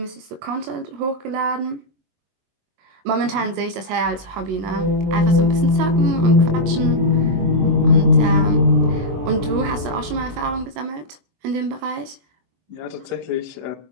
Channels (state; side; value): late; left; 23 ms